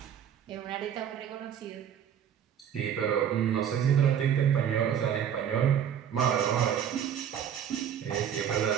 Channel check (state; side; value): quieter; left; 9.0 dB